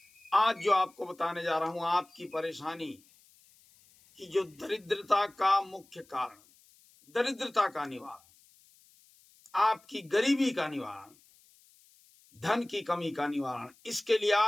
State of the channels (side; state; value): left; noise; hiss, 29 dB below the sound